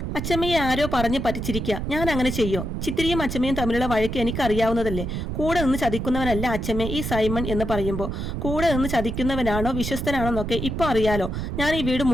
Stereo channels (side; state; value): right; noise; rumble, 4 dB below the sound